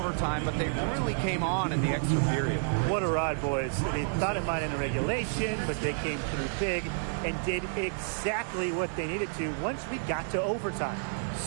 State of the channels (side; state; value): left; silent; digital silence